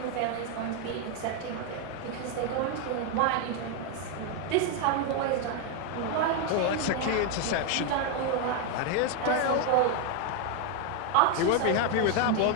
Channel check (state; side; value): different; both; correlation 0.01